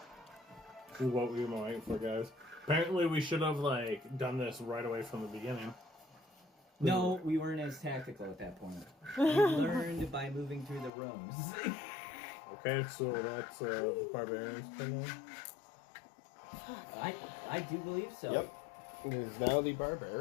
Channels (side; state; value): right; drops out; at 10.9 s